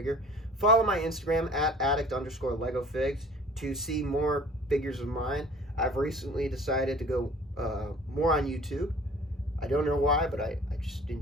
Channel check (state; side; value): normal; both; correlation 0.48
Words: Follow my Instagram at addict_LegoFigs to see more figures of mine. I've recently decided to go more on YouTube. I don't know why, but I just